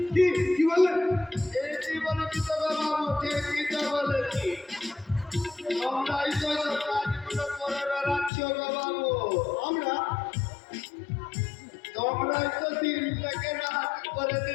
কি বললেন? এটি বলেছি তো বাবু, ঠিকই তো বলেছি। তোমরাই তো সব কাজগুলো করে বেড়াচ্ছ বাবু। তোমরাই তো দিনটাকে রাত করে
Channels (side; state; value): right; drops out; at 8.3 s